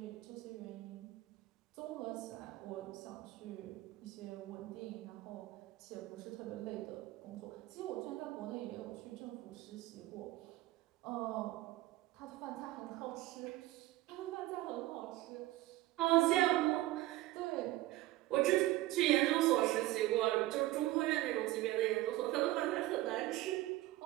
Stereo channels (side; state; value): left; quieter; 16.9 dB